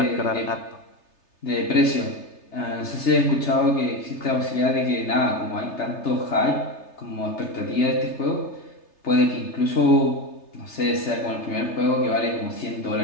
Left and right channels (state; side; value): late; right; 3.3 ms